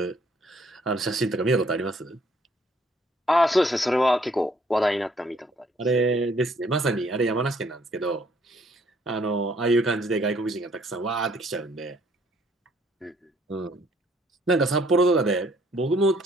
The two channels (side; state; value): both; normal; correlation 0.64